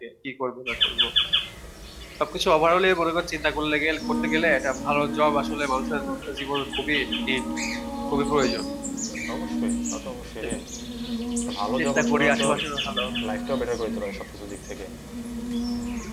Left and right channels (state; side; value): identical; both; correlation 1.00